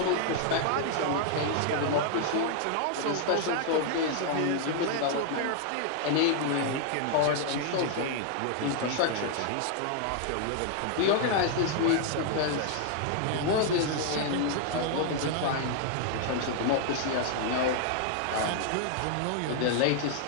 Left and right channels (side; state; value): both; different; correlation 0.00